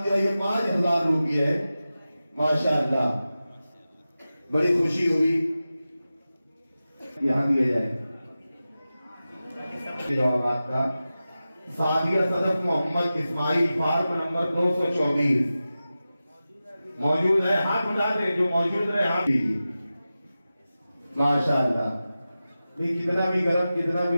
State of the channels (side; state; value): both; inverted; correlation -0.94